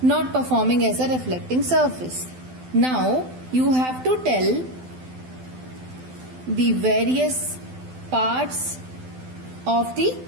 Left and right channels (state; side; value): late; left; 12 ms